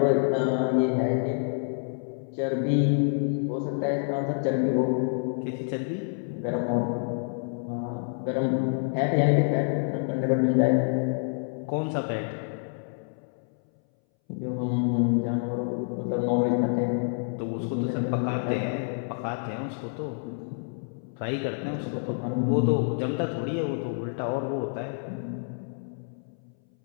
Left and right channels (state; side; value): silent; right; 60 dB below the other